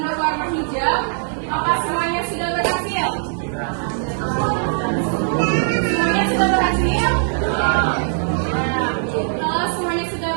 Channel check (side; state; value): left; silent; digital silence